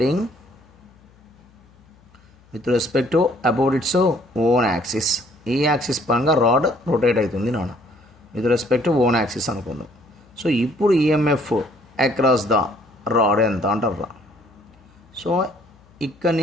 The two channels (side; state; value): left; noise; hum, 29 dB below the sound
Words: with respect to about its own axis. ఈ యాక్సిస్ పరంగా రాడ్ రొటేట్ అవుతుంది నాన్న with respect to own axis అనుకుందాం. సో ఇప్పుడు ఈఎంఎఫ్ అక్రాస్ ద రాడ్ ఎంత అంటారా. సో ఇక్కడ